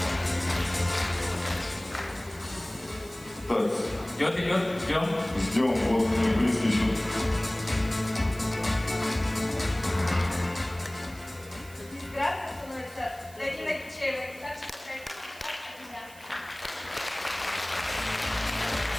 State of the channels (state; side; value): noise; right; hiss, 20 dB below the sound